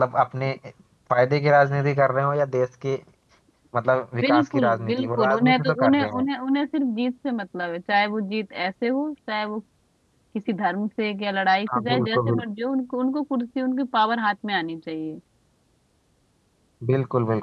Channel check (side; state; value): both; identical; correlation 1.00